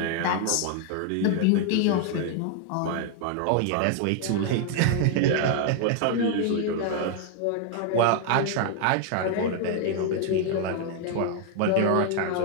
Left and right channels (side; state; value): both; different; correlation 0.00